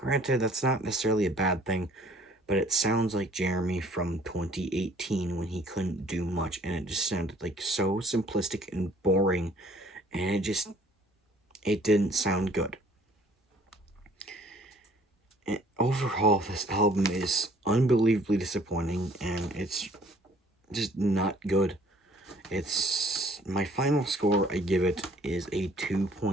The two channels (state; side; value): normal; both; correlation 0.57